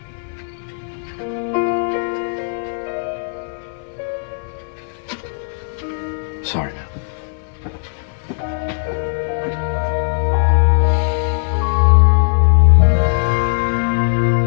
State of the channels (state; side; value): silent; right; digital silence